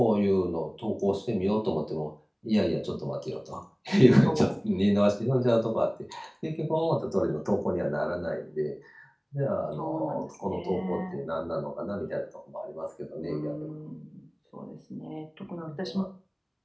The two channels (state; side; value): identical; both; correlation 1.00